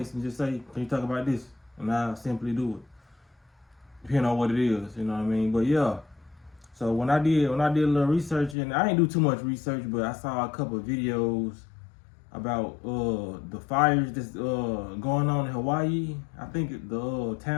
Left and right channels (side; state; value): right; drops out; at 8.6 s